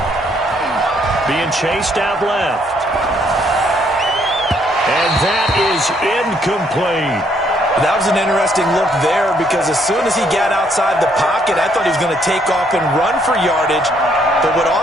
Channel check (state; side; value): normal; both; correlation 0.69